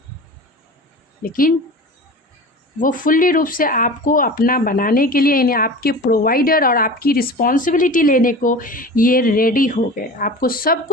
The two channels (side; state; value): both; normal; correlation 0.35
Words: लेकिन वो फुल्ली रूप से आपको अपना बनाने के लिए, यानी आपके प्रोवाइडर और आपकी रिस्पॉन्सिबिलिटी लेने को ये रेडी हो गए, आपको सब